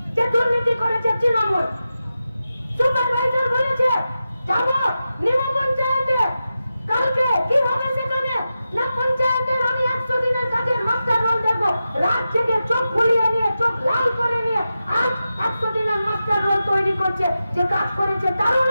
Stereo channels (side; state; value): both; inverted; correlation -0.91